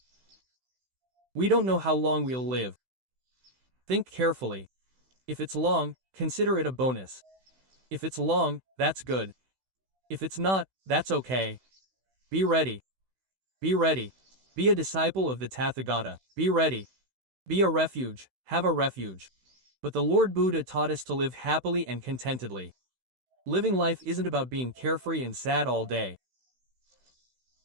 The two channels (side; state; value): left; late; 16 ms